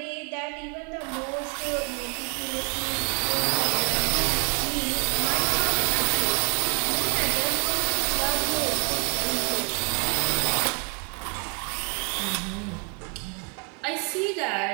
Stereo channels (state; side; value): quieter; left; 38.7 dB